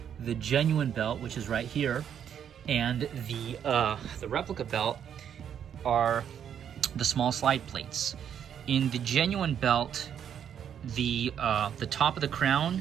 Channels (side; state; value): left; quieter; 8.8 dB